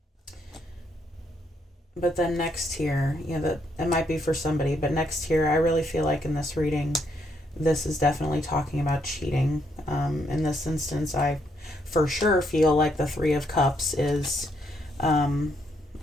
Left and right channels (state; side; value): normal; both; correlation 0.74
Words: But then next here, you know, that it might be for somebody, but next here, I really feel like in this reading, this is definitely talking about cheating. In this instance, I for sure feel like the Three of Cups is